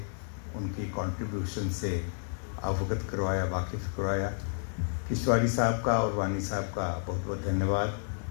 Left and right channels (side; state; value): right; silent; digital silence